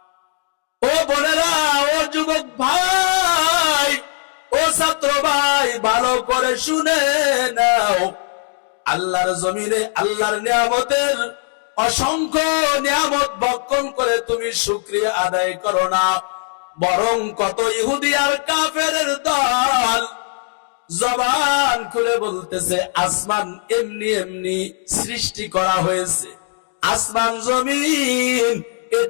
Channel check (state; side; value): silent; right; 58 dB below the other